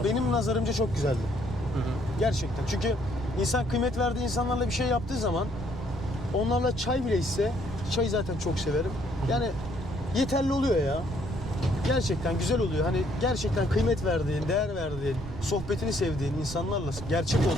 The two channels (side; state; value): right; noise; rumble, 11 dB below the sound